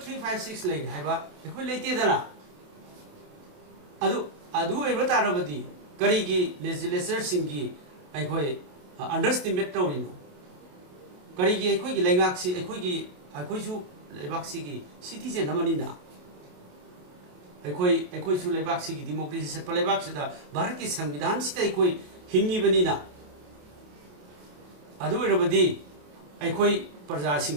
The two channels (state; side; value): late; left; 28 ms